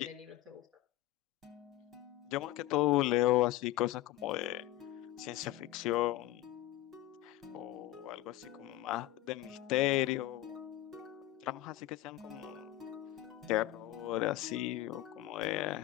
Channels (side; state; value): right; quieter; 15.0 dB